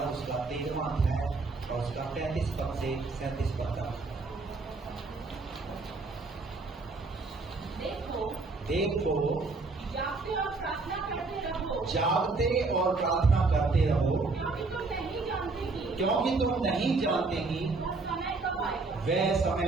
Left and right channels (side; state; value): left; quieter; 3.8 dB